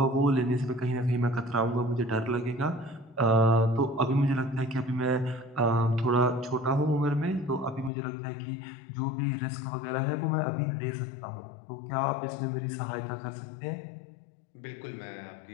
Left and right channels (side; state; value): right; drops out; at 7.9 s